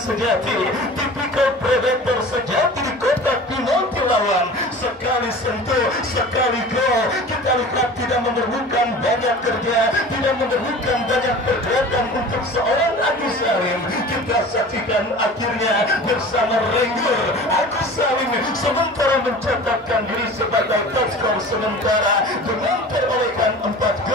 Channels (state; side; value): normal; both; correlation 0.39